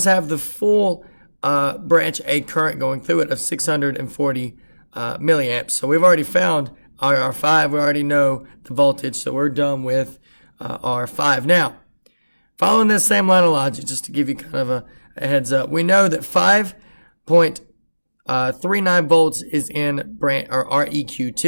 have the full branch A current going through it of 640 milliamps. So we've already found our R5. We already know the voltage. So we're done with R5. Now, following this same line of logic, just to give you kind of a heads up, we know that 5.07 39 volts is in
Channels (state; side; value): inverted; both; correlation -1.00